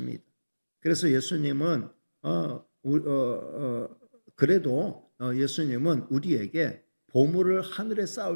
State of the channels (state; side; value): inverted; both; correlation -1.00